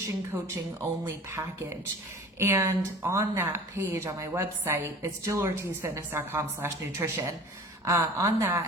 coaching only package. And on that page on my website, it's jillortizfitness.com/nutrition. On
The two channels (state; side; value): normal; both; correlation 0.42